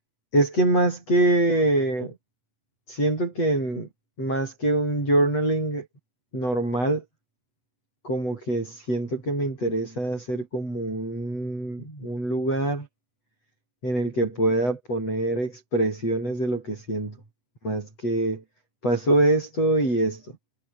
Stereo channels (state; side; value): late; right; 8.1 ms